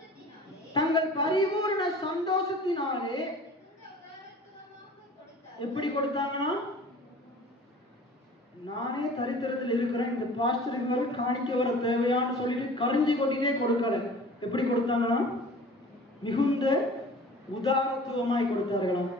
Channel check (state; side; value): normal; both; correlation 0.44